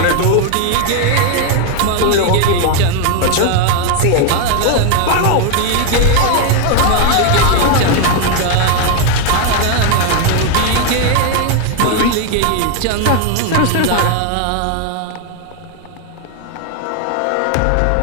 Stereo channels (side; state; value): both; different; correlation 0.01